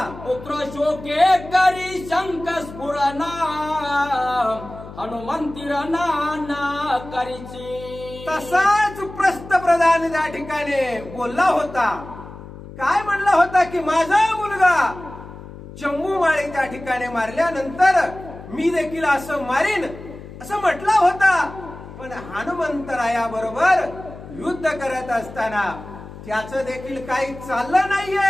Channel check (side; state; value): left; noise; hum, 15 dB below the sound